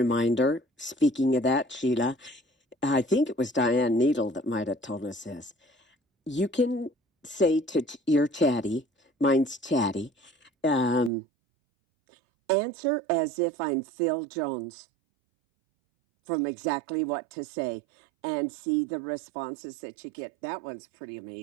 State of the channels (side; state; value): left; drops out; at 11.1 s